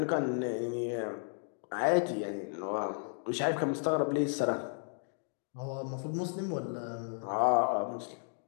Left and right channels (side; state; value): right; silent; 55 dB below the other